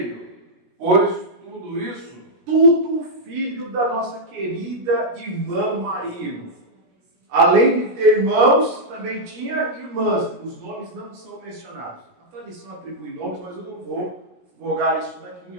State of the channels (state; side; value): late; left; 17 ms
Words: pois tudo isso, tudo filho da nossa querida irmã Maria. Além de ter irmãos, também tinha irmãs. Os nomes não são mencionados. A tradição atribui nomes, mas eu não vou vogar isso daqui em